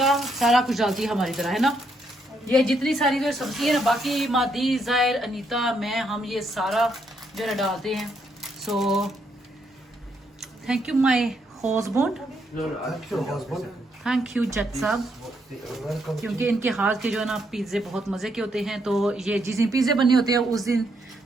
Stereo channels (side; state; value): both; normal; correlation 0.75